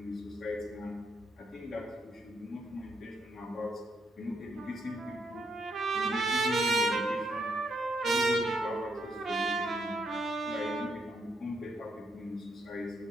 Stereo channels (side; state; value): both; normal; correlation 0.76